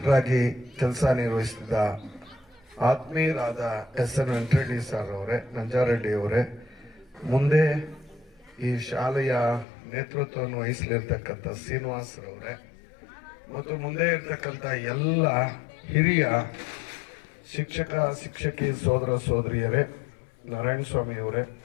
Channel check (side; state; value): right; drops out; at 9.7 s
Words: ಕೆಲಸ ನಿರ್ವಹಿಸಿದ ಆತ್ಮೀಯರಾದ ಎಸ್.ಎನ್. ವೆಂಕಟರೆಡ್ಡಿ ಸರ್ ಅವರೇ, ನಂಜಾರೆಡ್ಡಿ ಅವರೇ, ಮುಂದೆ ಈ ಶಾಲೆಯ ನೇತೃತ್ವವನ್ನು ವಹಿಸಲಿರ್ತಕ್ಕಂಥ ಶ್ರೀನಿವಾಸರವರೇ ಮತ್ತು ಮುಂದೆ ಇರ್ತಕ್ಕಂಥ ಎಲ್ಲ ಹಿರಿಯ ಶಿಕ್ಷಕ ಶಿಕ್ಷಕಿ ಸೋದರ ಸೋದರಿಯರೇ, ನಾರಾಯಣ ಸ್ವಾಮಿಯವರೇ